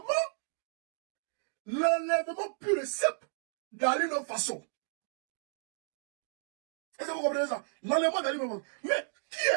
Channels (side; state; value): left; silent; digital silence